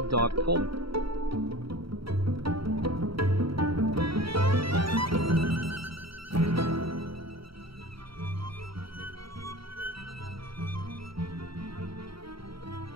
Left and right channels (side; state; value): left; late; 0.75 ms